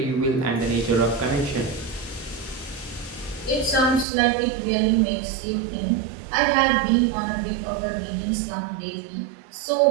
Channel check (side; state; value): left; drops out; at 4.0 s